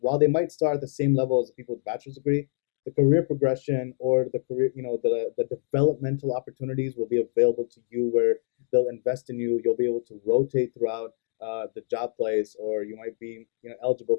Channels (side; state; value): right; silent; 61 dB below the other